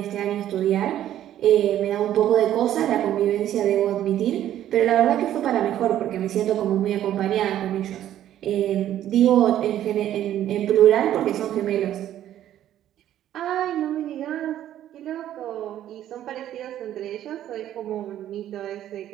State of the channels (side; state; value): left; quieter; 11.9 dB